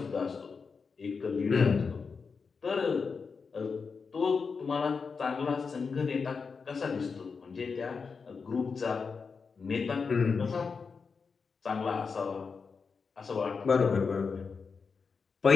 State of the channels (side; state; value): right; quieter; 5.2 dB